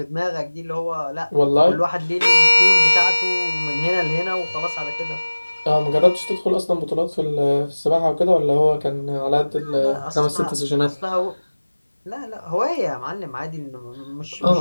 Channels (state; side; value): inverted; both; correlation -1.00